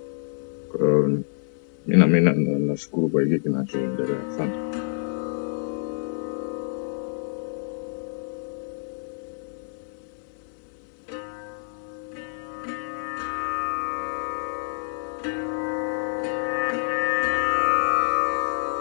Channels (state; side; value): silent; right; 60 dB below the other